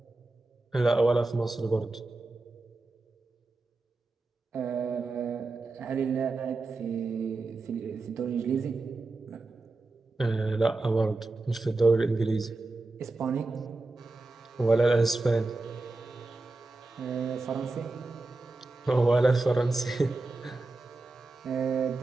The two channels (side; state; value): left; quieter; 3.2 dB